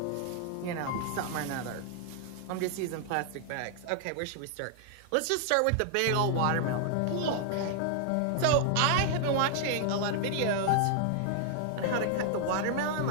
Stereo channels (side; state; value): both; different; correlation 0.00